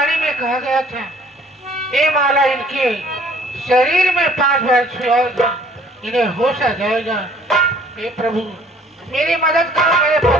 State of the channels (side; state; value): both; normal; correlation 0.56